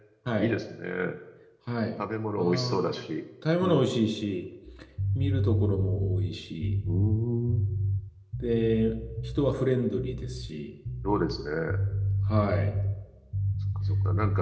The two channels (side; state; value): both; identical; correlation 1.00